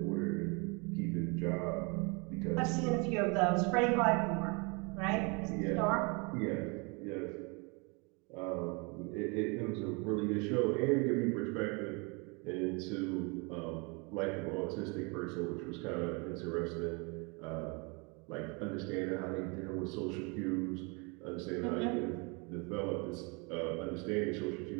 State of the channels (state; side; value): quieter; left; 30.7 dB